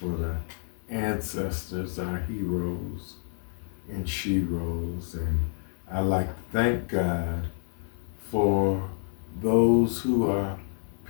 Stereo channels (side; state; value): right; silent; digital silence